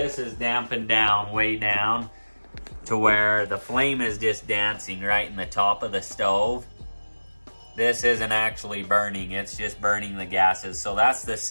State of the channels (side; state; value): both; inverted; correlation -1.00